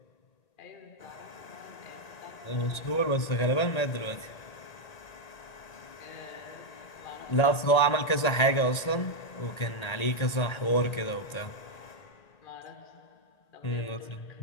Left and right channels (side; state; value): right; late; 1.8 ms